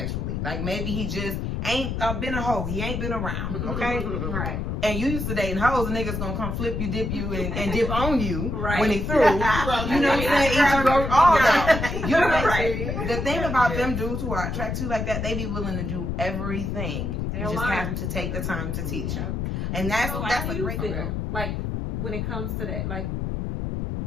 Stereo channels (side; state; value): left; noise; rumble, 2 dB below the sound